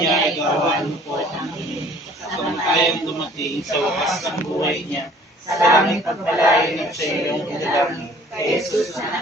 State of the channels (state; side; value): normal; both; correlation 0.53